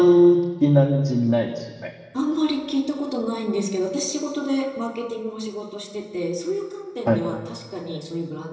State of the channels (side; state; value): both; identical; correlation 1.00